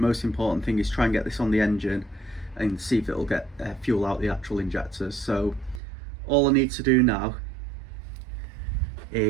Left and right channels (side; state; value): left; drops out; at 5.8 s